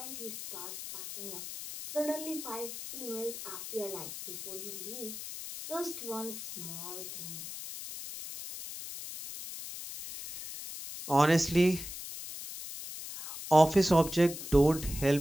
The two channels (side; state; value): left; noise; hiss, 9 dB below the sound